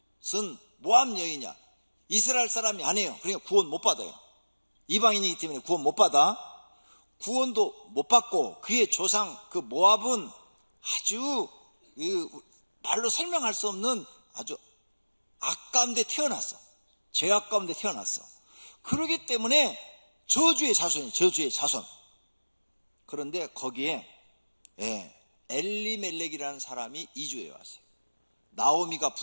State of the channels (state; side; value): inverted; both; correlation -1.00